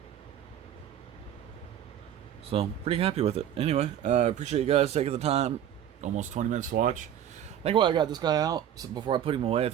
So, pretty happy with it. Anyway, I appreciate you guys taking the time. Almost 20 minutes to watch. think while I got this guy out, so before I put him away, I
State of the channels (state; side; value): quieter; left; 10.2 dB